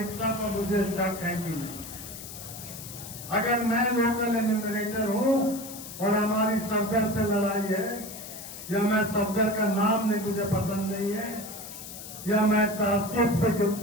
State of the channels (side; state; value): left; noise; hiss, 12 dB below the sound